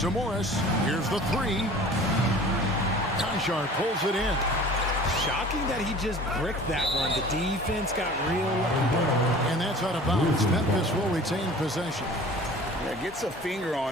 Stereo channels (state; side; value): normal; both; correlation 0.44